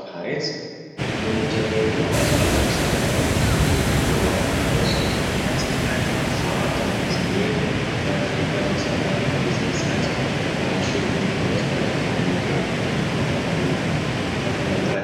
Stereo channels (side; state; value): both; identical; correlation 1.00